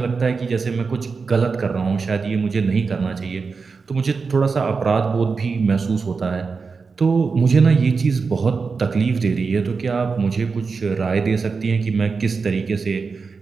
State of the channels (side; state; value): left; quieter; 4.8 dB